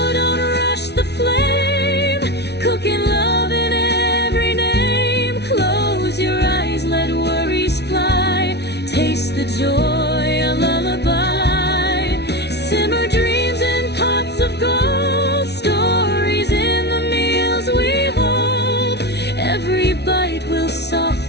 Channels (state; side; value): late; right; 0.49 ms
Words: don't rush the flame, cooking love in every name. Close your eyes, let worries fly, taste the joy, a lullaby. Simmer dreams in pots of gold, stories in the meals we hold. Every bite will